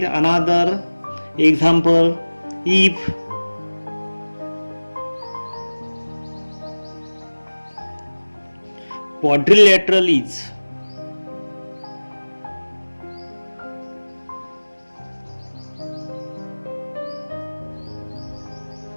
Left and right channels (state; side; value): inverted; both; correlation -1.00